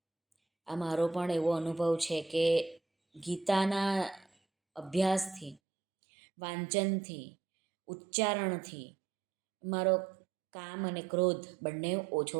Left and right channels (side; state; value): left; drops out; at 5.6 s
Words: આ મારો પણ એવો અનુભવ છે કે ગીતાના અભ્યાસથી, વાંચનથી, ઉચ્ચારણથી મારો કામ અને ક્રોધ બંને ઓછો